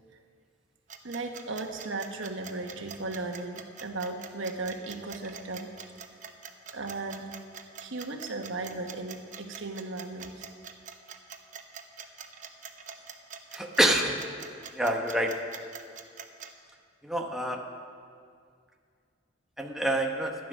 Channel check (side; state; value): both; normal; correlation 0.43